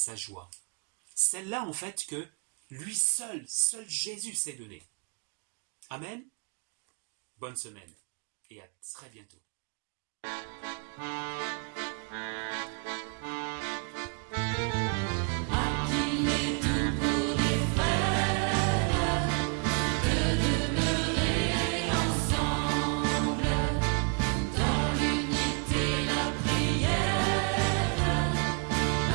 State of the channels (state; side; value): quieter; left; 36.5 dB